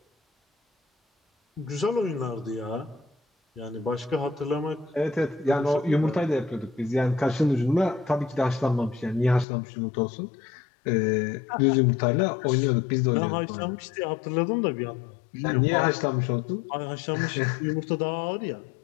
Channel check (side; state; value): right; drops out; at 9.5 s